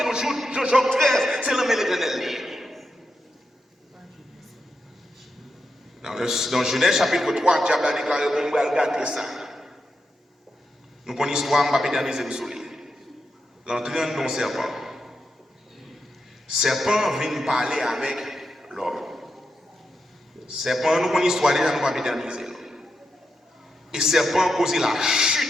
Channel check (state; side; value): normal; both; correlation 0.86